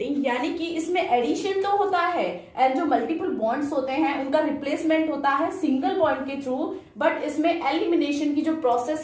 यानी कि इसमें एडिशन तो होता है एंड जो मल्टीपल बॉन्ड्स होते हैं उनका रिप्लेसमेंट होता है सिंगल बॉन्ड के थ्रू, बट इसमें एलिमिनेशन की जो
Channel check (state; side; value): identical; both; correlation 1.00